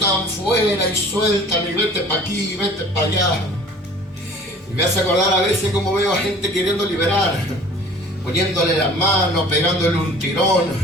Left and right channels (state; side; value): normal; both; correlation 0.47